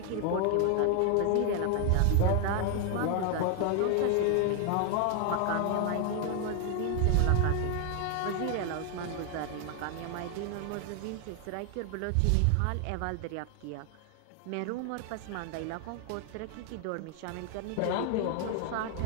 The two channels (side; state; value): both; different; correlation 0.00